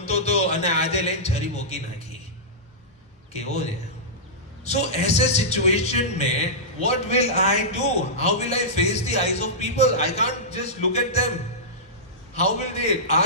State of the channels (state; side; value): normal; both; correlation -0.14